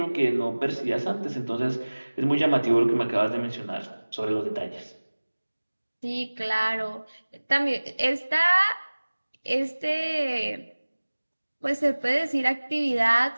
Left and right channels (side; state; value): both; inverted; correlation -1.00